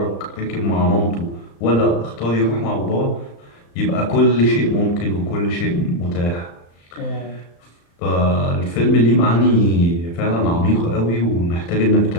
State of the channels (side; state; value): right; late; 35 ms